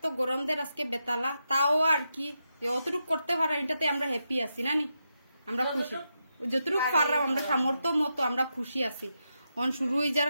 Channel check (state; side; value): inverted; both; correlation -0.86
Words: তো গরম দের আজকে বেতালা, তাও আর কি যতটুক করতে পারা এটাতে আমরা হ্যাপি আছি না নি, আমরা খুশি। যতটুক পারলাম আমরা সামর্থ্য মতো আমরা খুশি আছি। এখন শুরু হয়ে